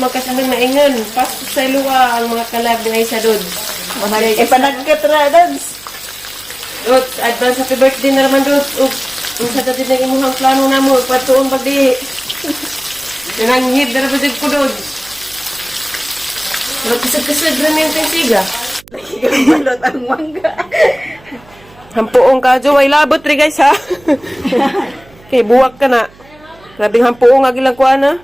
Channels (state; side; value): noise; right; hum, 26 dB below the sound